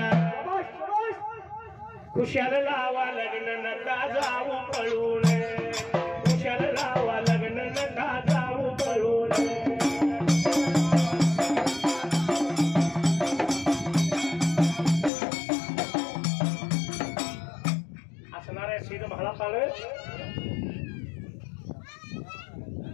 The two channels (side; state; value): right; drops out; at 15.1 s